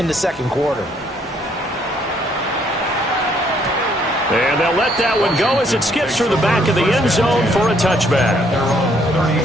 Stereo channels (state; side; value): normal; both; correlation 0.67